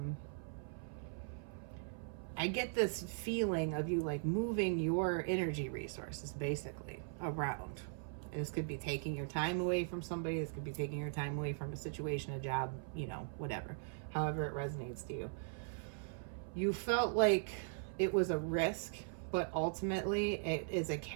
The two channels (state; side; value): silent; left; 51 dB below the other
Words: I get this feeling of you like moving your energy resources basically around. This could be taking your time away from somebody. This could be taking your time away from a situation, a job, you know, whatever. However it resonates to you. You felt like it was a risk, but ultimately it is a